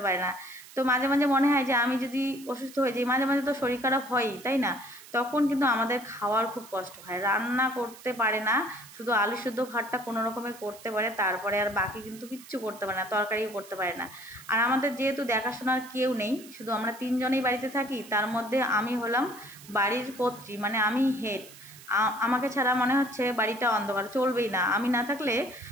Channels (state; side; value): noise; right; hiss, 19 dB below the sound